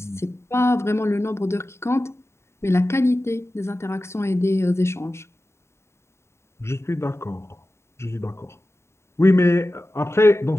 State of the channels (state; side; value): late; right; 0.13 ms